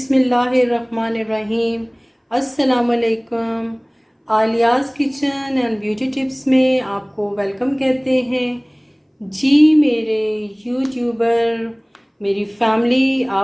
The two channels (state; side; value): identical; both; correlation 1.00